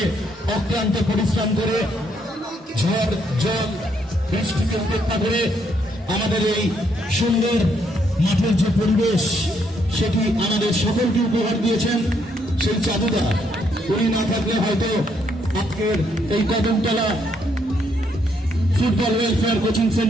অক্লান্ত পরিশ্রম করে ঝড় জল বৃষ্টিকে উপেক্ষা করে আমাদের এই সুন্দর মাঠের যে পরিবেশ সেটি আমাদের সকলকে উপহার দিয়েছেন সেই চাঁদুদা। উনি না থাকলে হয়তো আজকের এই কদমতলা ফুটবল ওয়েলফেয়ার কোচিং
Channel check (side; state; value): both; normal; correlation 0.73